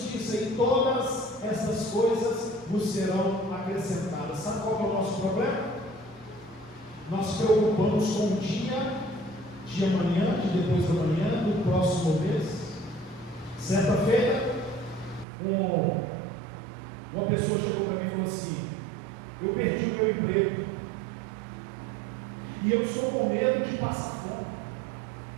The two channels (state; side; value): drops out; left; at 15.2 s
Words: e todas essas coisas vos serão acrescentadas. Sabe qual é o nosso problema? Nós preocupamos com o dia de amanhã, de depois da manhã, do próximo mês. Certa feita, uma pessoa chegou para mim e falou assim: eu perdi o meu emprego e eu estou com medo de passar fome.